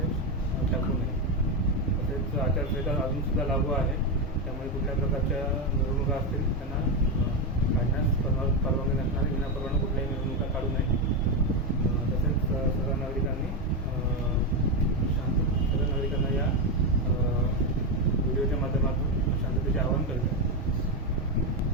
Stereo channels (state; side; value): normal; both; correlation 0.09